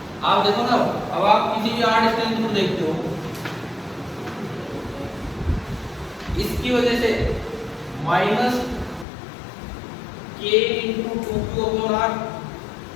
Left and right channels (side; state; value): right; drops out; at 9.1 s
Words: आप देखो ना, अब आप किसी भी r डिस्टेंस को देखते हो, इसकी वजह से -k × 2q/r,